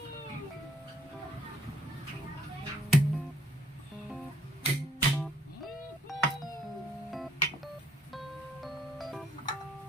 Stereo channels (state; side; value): normal; both; correlation 0.64